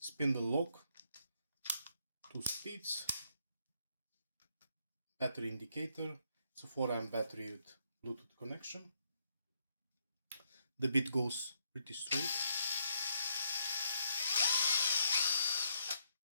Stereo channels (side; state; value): both; inverted; correlation -0.74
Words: lock, 2 speeds, battery indicator. It's a 4 amp battery with Bluetooth connection. The bit goes pretty straight.